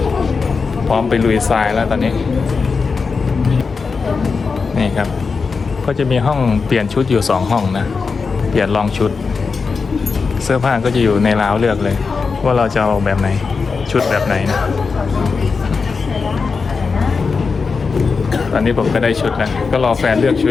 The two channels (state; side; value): quieter; right; 4.9 dB